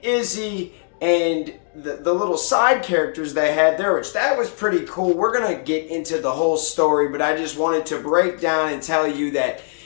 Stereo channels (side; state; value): right; silent; digital silence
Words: Izzy and the little side characters they had there, which that was pretty cool. We're gonna get into the whole story, but I just wanted to break down and tell you that